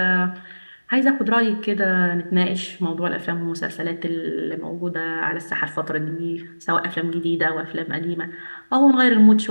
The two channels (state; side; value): inverted; both; correlation -1.00